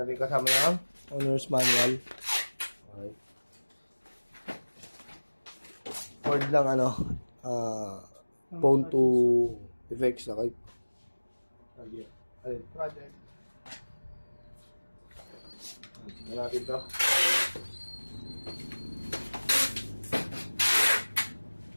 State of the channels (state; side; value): inverted; both; correlation -1.00